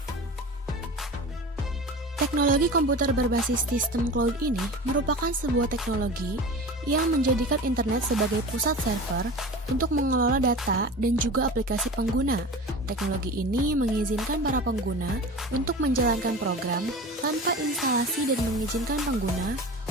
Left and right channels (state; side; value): normal; both; correlation 0.34